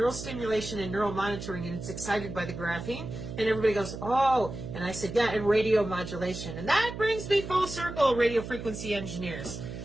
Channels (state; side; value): noise; right; hum, 9 dB below the sound